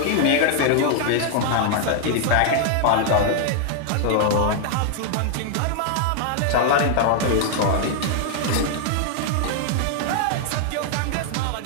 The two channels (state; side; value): different; both; correlation 0.00